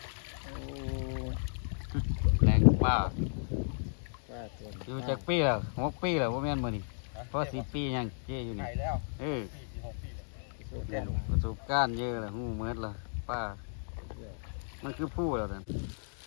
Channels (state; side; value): silent; right; digital silence